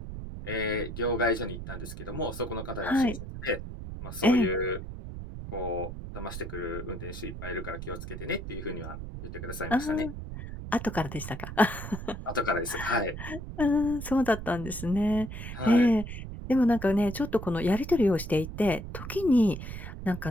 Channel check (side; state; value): right; noise; rumble, 9 dB below the sound